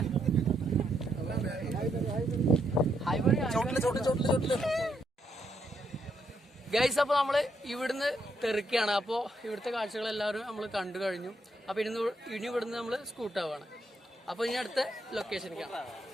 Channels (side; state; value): both; normal; correlation 0.77